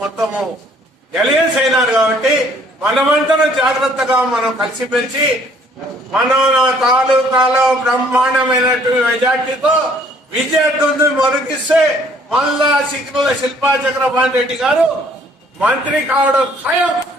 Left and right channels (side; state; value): both; normal; correlation 0.60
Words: మొత్తము ఎలియన్స్ అయినారు. కాబట్టి మనమంతా జాగ్రత్తగా మనం కలిసిమెలిసి మన తాలూకాలో బ్రహ్మాండమైనటువంటి మెజార్టీతో విజయదుందు మొరకిస్తే మళ్ళా సిగ్నల్ శిల్పా చక్రపాణి రెడ్డి గారు మంత్రి కావడం ఖాయం.